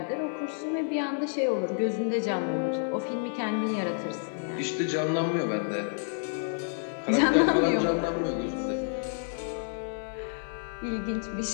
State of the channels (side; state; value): right; silent; 58 dB below the other